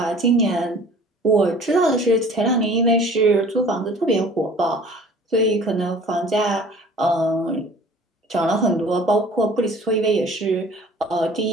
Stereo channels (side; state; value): both; normal; correlation 0.47